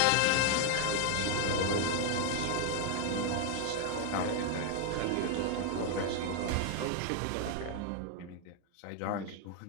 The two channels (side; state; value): both; different; correlation 0.00